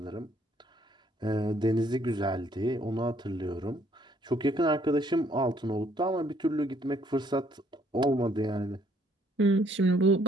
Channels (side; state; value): both; normal; correlation 0.65